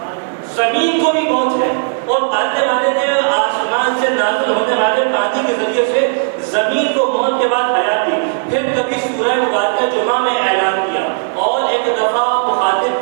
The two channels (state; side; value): silent; left; digital silence